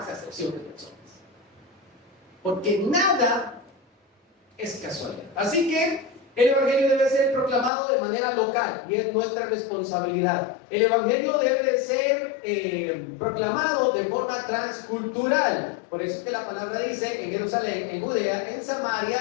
acepción de personas, porque nada es casualidad. Así que el Evangelio debe ser proclamado de manera local y es nuestra responsabilidad. El Evangelio debe de ser proclamado de forma transcultural. Por eso es que la palabra dice: en Jerusalén, en Judea, en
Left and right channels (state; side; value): drops out; right; at 7.7 s